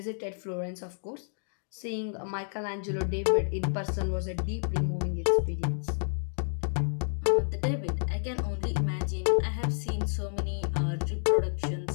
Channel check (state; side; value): silent; right; digital silence